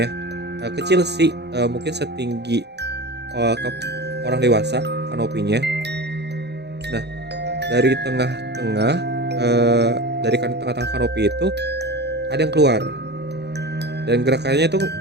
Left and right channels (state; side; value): late; left; 0.49 ms